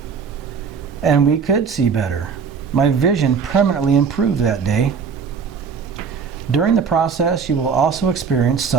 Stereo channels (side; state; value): left; quieter; 6.0 dB